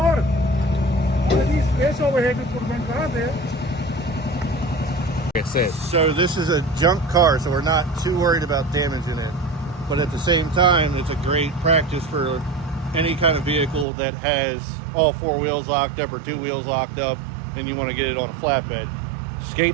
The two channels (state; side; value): drops out; left; at 13.9 s